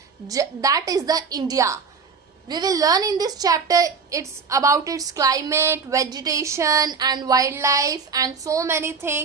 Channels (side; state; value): left; quieter; 5.4 dB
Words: that is the India. We will learn in this chapter it's about its climate, vegetation and wildlife and so many